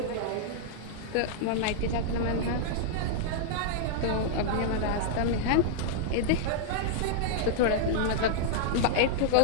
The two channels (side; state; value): both; different; correlation -0.01